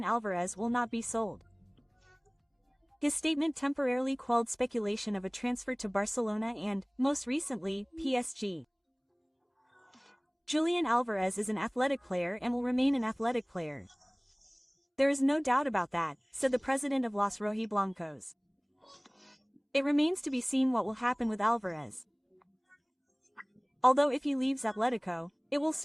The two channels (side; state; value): both; identical; correlation 1.00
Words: Alvarez will not be sold. His statement temporarily quelled speculation of a transfer to Barcelona and, most recently, PSG. Julian Alvarez is an athletic player and will remain an athletic player. There is no doubt about that, said the president of Los Rojiblancos. It remains to be seen what will happen with Alvarez. Although if he leaves Atletico, it will